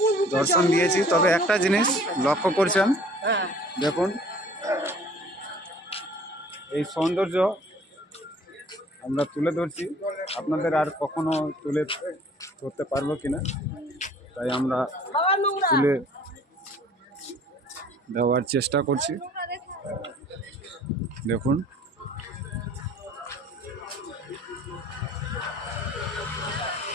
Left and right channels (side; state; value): both; normal; correlation 0.52